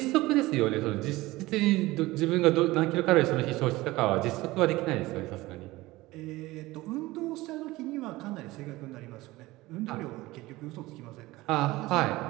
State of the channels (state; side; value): quieter; left; 19.3 dB